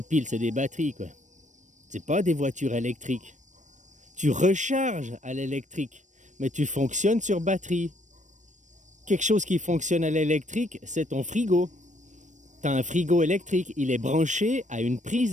piles, c'est des batteries, quoi. C'est pas des voitures électriques. Tu recharges à l'électrique, mais tu fonctionnes sur batterie. Quelque chose qui fonctionne à l'électrique, c'est ton frigo. T'as un frigo électrique, il est branché à une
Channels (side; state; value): left; late; 0.35 ms